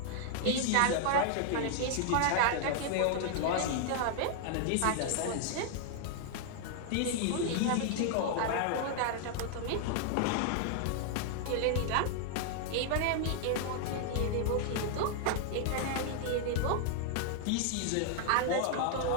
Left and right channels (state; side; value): different; both; correlation 0.00